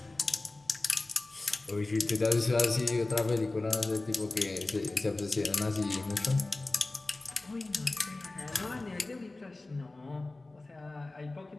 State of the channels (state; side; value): quieter; right; 3.0 dB